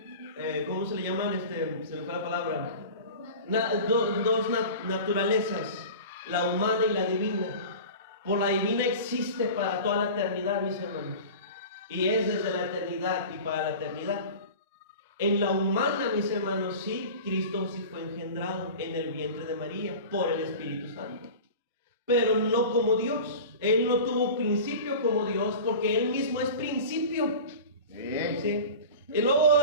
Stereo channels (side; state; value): both; inverted; correlation -0.35